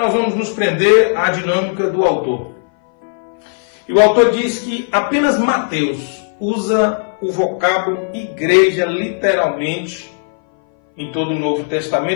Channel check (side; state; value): right; silent; 60 dB below the other